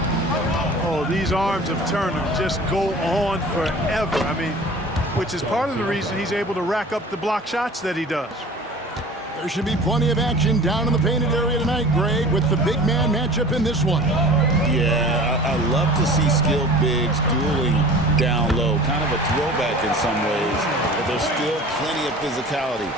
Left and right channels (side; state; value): both; normal; correlation 0.42